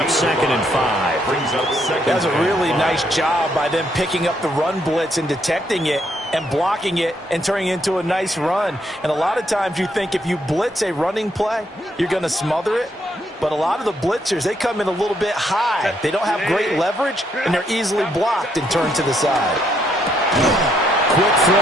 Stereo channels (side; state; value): both; normal; correlation 0.73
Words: 2nd and 5. That's a really nice job by them picking up the run blitz and detecting it and blocking it and turning it into a nice run. And a lot of times you think if you blitz a running play, you're going to smother it. But a lot of the blitzers, they come in a little bit high. They don't have great leverage, and they're easily blocked and turned to the side. Quick